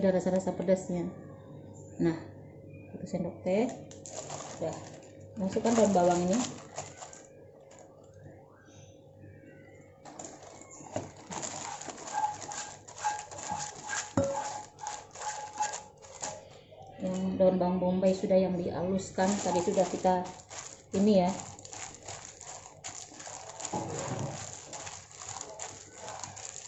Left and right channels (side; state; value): both; identical; correlation 1.00